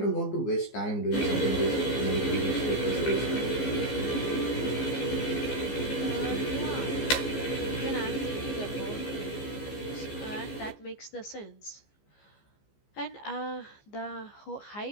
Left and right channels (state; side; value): late; right; 15 ms